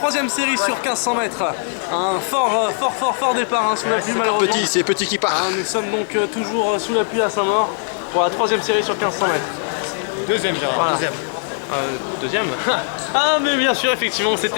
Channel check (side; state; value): right; silent; digital silence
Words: série sur 1500 mètres. Un fort départ hein, sous la pluie malheureusement. C'est petit qui part. Nous sommes donc toujours sous la pluie à Saint-Maur pour la troisième série sur 1500 mètres. Deuxième, Gérard, voilà. Deuxième. Ah mais bien sûr, effectivement,